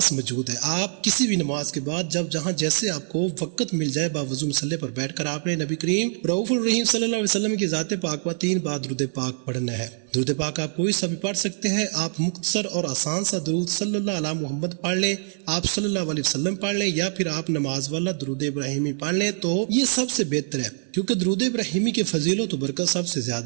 موجود ہے۔ آپ کسی بھی نماز کے بعد جب جہاں جیسے آپ کو وقت مل جائے، باوضو مصلی پر بیٹھ کر آپ نے نبی کریم رؤوف الرحیم صلی اللہ علیہ وسلم کی ذات پاک پر 3 بار درود پاک پڑھنا ہے۔ درود پاک آپ کوئی سا بھی پڑھ سکتے ہیں۔ آپ مختصر اور آسان سا درود صلی اللہ علیہ محمد پڑھ لیں، آپ صلی اللہ علیہ وسلم پڑھ لیں، یا پھر آپ نماز والا درود ابراہیمی پڑھ لیں تو یہ سب سے بہتر ہے، کیونکہ درود ابراہیمی کی فضیلت و برکت سب سے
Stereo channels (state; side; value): silent; left; digital silence